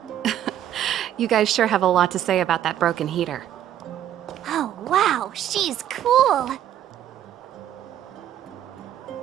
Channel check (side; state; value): left; quieter; 11.3 dB